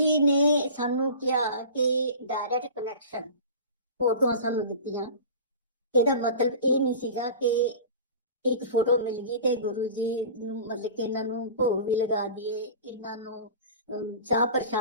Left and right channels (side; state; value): both; inverted; correlation -0.37